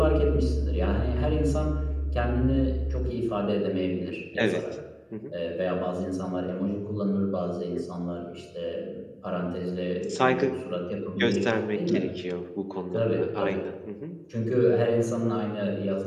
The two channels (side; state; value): both; identical; correlation 1.00